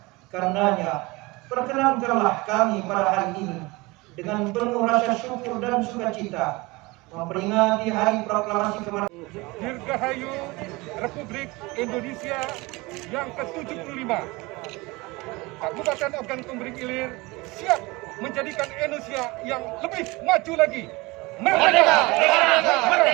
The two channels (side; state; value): left; quieter; 23.4 dB